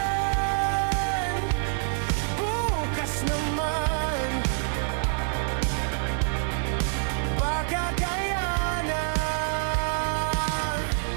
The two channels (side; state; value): left; silent; 61 dB below the other